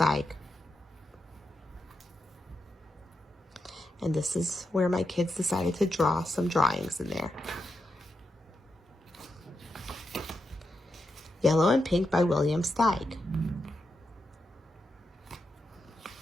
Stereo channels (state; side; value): normal; both; correlation 0.86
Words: And this is where my kids decided to draw some drawings in there. Yellow and Pink by William Steig.